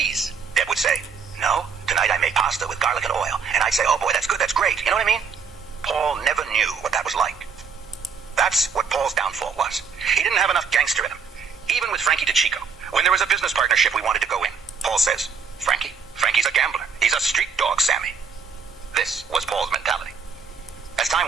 Deb would say, no, tonight I made pasta with garlic and oil. And I'd say, oh boy, that's good, that's great. You know what I mean? Paul never knew what that was like. That's what Paul's downfall was. He didn't have enough gangster in him. Even with Frankie DeChico, when there was a business partnership we wanted to go in, Paul says, Frankie's a gambler. He's a street dog, Sammy. This was Paul's mentality. As time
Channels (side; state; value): left; quieter; 5.9 dB